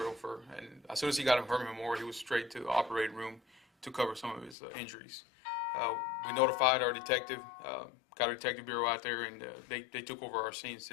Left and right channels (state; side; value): drops out; right; at 4.5 s